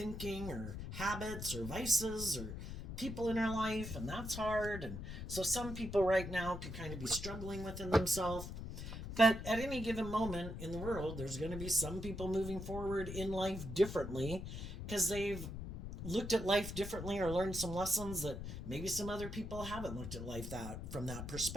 or habits or vices or people in our life, and that's hard. And so some people right now could kind of be struggling within themselves. But at any given moment in the world, there's going to be some people moving forward in life differently because they've looked at life differently or learned some lessons that maybe some other people haven't looked at life that from that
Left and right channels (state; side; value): noise; left; rumble, 7 dB below the sound